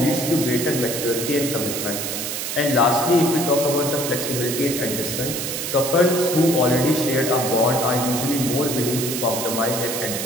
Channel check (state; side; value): noise; right; hiss, 4 dB below the sound